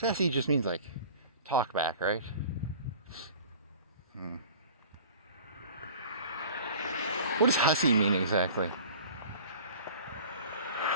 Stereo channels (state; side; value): inverted; both; correlation -0.43